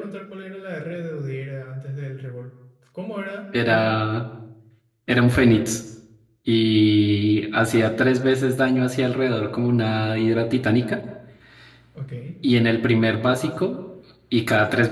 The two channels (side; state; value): both; identical; correlation 1.00